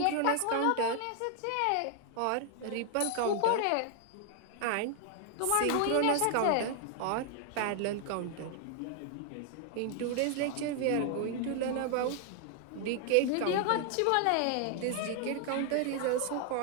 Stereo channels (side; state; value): both; different; correlation 0.00